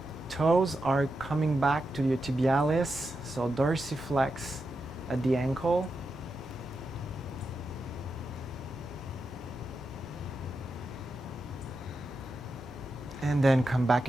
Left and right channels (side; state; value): both; normal; correlation 0.87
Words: Toes are coming back to your tibialis, so dorsiflex at the ankle. And then come back